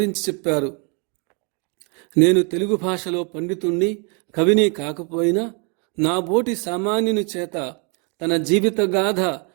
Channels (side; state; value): left; quieter; 35.6 dB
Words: చెప్పారు. నేను తెలుగు భాషలో పండితుణ్ణి, కవిని కాకపోయినా నా బోటి సామాన్యుని చేత తన జీవిత గాథ